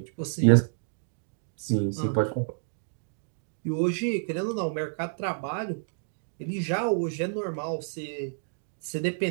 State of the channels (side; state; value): left; silent; digital silence